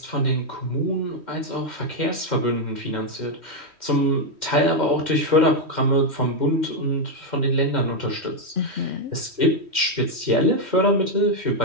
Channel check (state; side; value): late; left; 3.1 ms